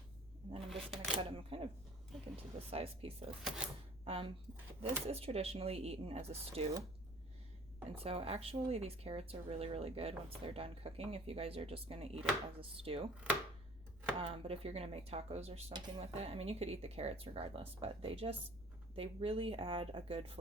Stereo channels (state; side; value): noise; left; rumble, 18 dB below the sound